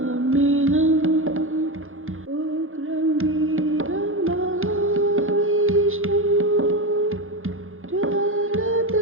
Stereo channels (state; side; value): late; left; 0.60 ms